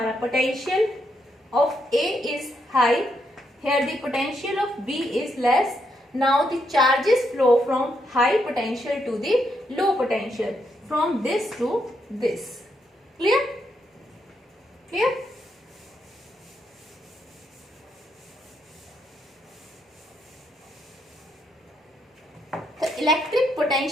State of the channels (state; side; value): normal; both; correlation 0.78